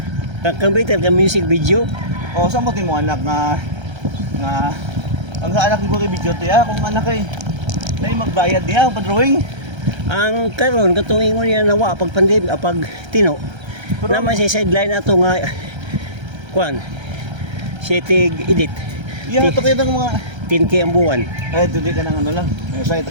kang Britel ka music video. o sa mo mong anak nga, ang sa anak ko kay video tiya, kung anak ay, naay magbayad niya, pa-drawing. Ang karon katong ingon niya nawa pag pandemic pag tino. Pero- Naman sa sideline ato nga Kuan. Sitig edit. Iya, ito kayo ng mga, 10K ang buwan. ay, hindi ka ng ano lang, may sa'yo,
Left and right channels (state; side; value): late; left; 1.3 ms